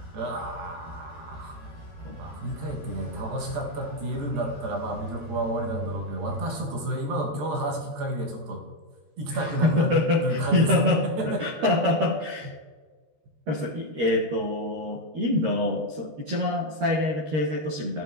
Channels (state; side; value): late; left; 13 ms